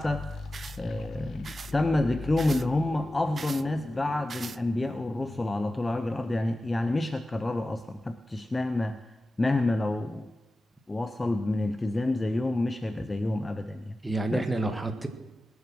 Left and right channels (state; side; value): normal; both; correlation 0.94